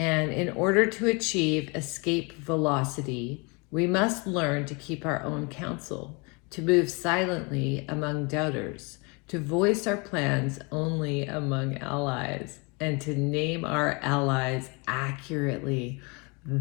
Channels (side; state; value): right; quieter; 30.2 dB